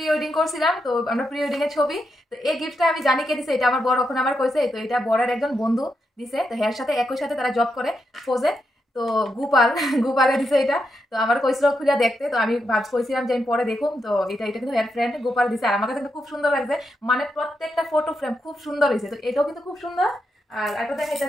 ওয়েডিং করছিলাম, তো আমরা প্রি ওয়েডিং এর ছবি। তো এই গিফটটা আমি জানি কে দিছে, এটা আমার বড় ওখানে আমার কইছে। তো এটা বড়ের একজন বন্ধু দিছে, তো এর সাথে একই সাথে তারা জব করে ফোজে। তো গোপাল গোপালে দিছে এটা। তো আমার কইছিল খুলে দেখতে, তো আমি কইছিলাম যে আমি পরে দেখুম। তো এটা এটা কিন্তু এর ফ্রেন্ড গোপাল দিছে, আর আমার কাছে কিন্তু খুব সুন্দর লাগছে, মানে প্রত্যেকটা ফটো ফ্রেম খুব সুন্দর হয়েছে। তো এটাও কিন্তু খুব সুন্দর। আর একটা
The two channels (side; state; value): both; normal; correlation 0.83